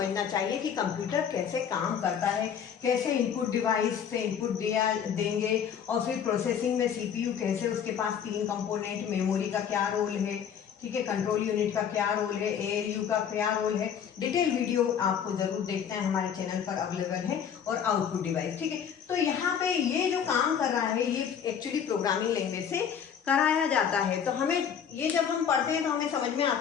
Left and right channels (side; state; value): right; quieter; 8.0 dB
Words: चाहिए कि कंप्यूटर कैसे काम करता है, कैसे इनपुट डिवाइस से इनपुट दिया देंगे, और फिर प्रोसेसिंग में सीपीयू कैसे, उसके पास 3 कंपोनेंट, मेमोरी का क्या रोल है, ठीक है, कंट्रोल यूनिट का क्या रोल है, एएलयू का क्या रोल है। डिटेल वीडियो आपको जरूर देखना है, हमारे चैनल पर अवेलेबल है। और आउटपुट डिवाइस, ठीक है। तो यहाँ पे ये जो काम कर रहा है ये एक्चुअली प्रोग्रामिंग लैंग्वेज से कराया जाता है। तो हमें ये जब हम पढ़ते हैं तो हमें समझ में